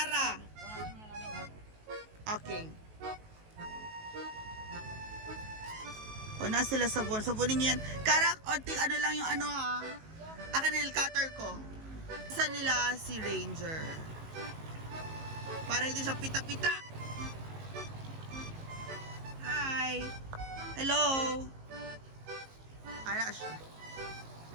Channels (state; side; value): late; left; 19 ms